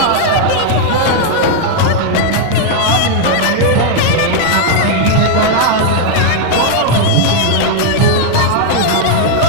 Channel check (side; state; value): both; different; correlation 0.00